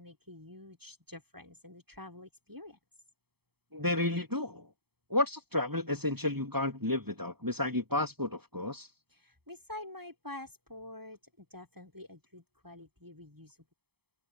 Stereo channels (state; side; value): late; left; 0.97 ms